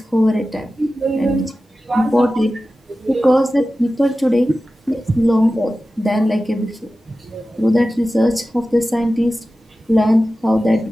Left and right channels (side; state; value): both; normal; correlation 0.95